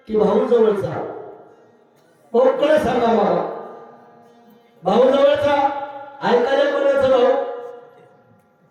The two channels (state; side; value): identical; both; correlation 1.00